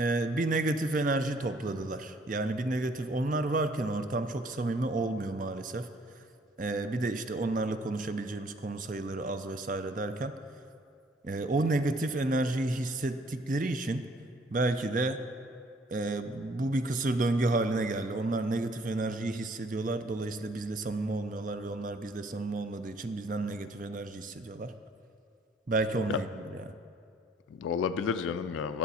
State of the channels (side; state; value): both; normal; correlation 0.60